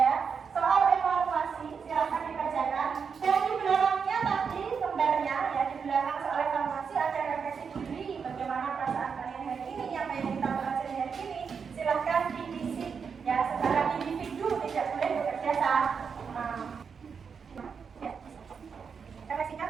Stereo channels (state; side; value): quieter; left; 6.1 dB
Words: soal evaluasi, silakan dikerjakan. Dan di belakangnya tadi lembarnya ya, di belakang soal evaluasi ada refleksi diri, bagaimana perasaan kalian hari ini, apa yang kita pelajari hari ini. Silakan diisi ya secara individu, tidak boleh bekerja sama. Ya. Kita singkat,